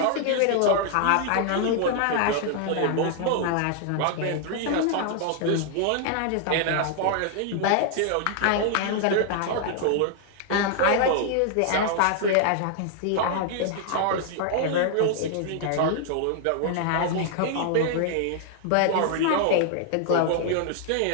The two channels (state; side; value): different; both; correlation 0.00